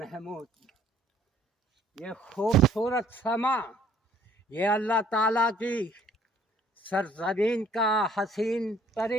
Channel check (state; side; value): normal; both; correlation 0.59